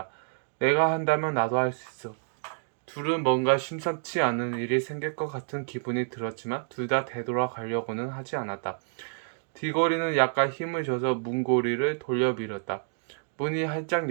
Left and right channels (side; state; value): left; silent; digital silence